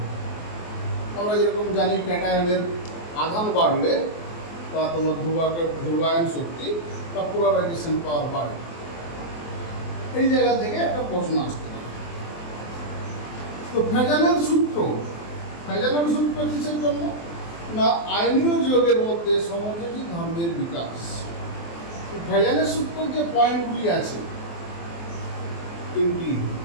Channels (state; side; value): late; right; 24 ms